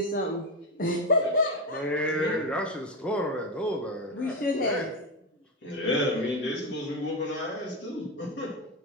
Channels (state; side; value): normal; both; correlation 0.14